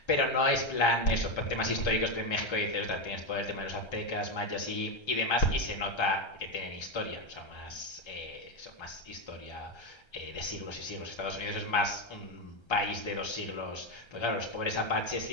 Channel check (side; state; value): right; late; 1.3 ms